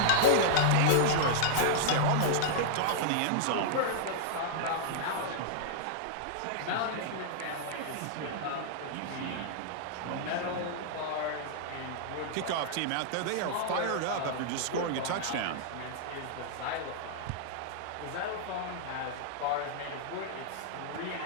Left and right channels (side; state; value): both; different; correlation -0.01